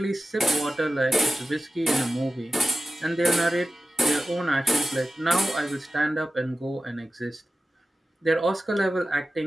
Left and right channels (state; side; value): normal; both; correlation 0.95